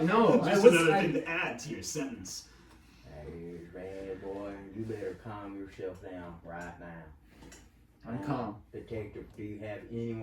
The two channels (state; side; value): identical; both; correlation 1.00